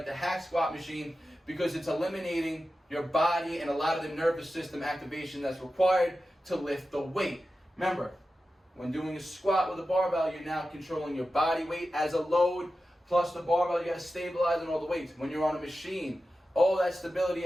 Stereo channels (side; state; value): both; normal; correlation 0.93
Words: the hack squat machine, because it's eliminating your body and a lot of the nervous system activation that's required to lift the weight. Remember, When doing a squat with a barbell, you're now controlling your body weight as a load, plus the barbell, you gotta stabilize on all the weights. When you're on a machine, all that stability